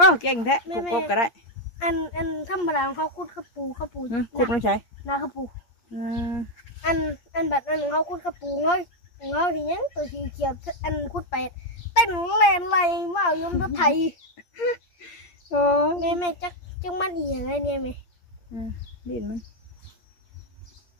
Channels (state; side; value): late; right; 8.5 ms